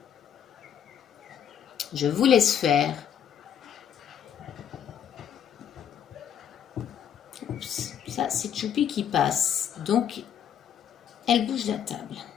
Je vous laisse faire. Oups, ça c'est Choupi qui passe. Donc, elle bouge la table.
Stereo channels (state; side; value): quieter; right; 8.9 dB